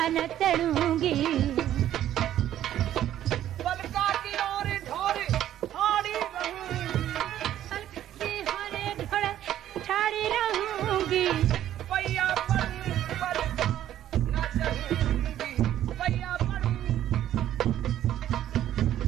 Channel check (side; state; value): left; quieter; 11.9 dB